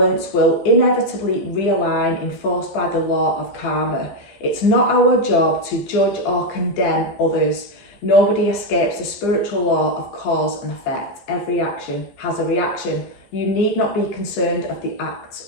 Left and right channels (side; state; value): right; late; 15 ms